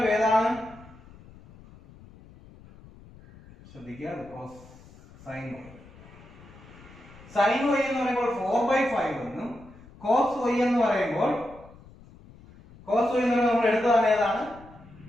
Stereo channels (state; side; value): noise; left; rumble, 22 dB below the sound